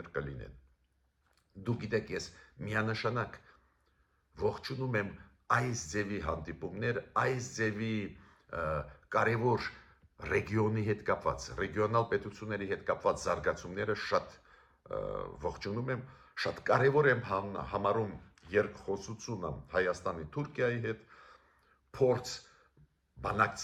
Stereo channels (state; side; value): identical; both; correlation 1.00